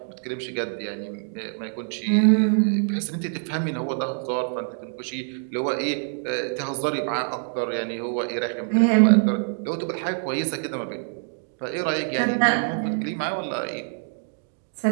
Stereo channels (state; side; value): silent; left; 62 dB below the other